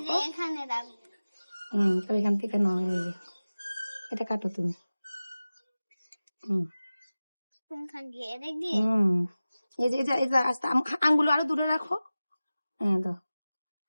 যে এখানে রাখবো। তাহলে এখান থেকে নাও, এই যে এটা কাটো তুমি। কোনখান দিয়ে? এদিক দিয়ে? এই যে এই যে আস্তে আঙ্গুল আরো দূরে রাখো। হ্যাঁ দাও,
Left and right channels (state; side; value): inverted; both; correlation -0.97